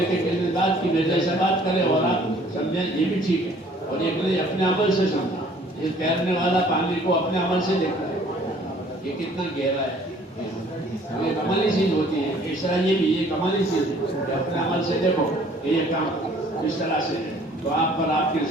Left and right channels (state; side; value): normal; both; correlation 0.57